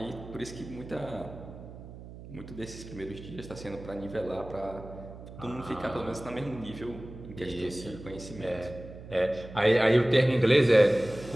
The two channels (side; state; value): right; noise; hum, 15 dB below the sound